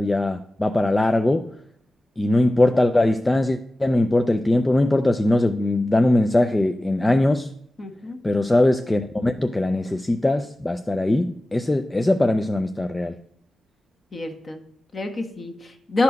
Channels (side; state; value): both; normal; correlation 0.96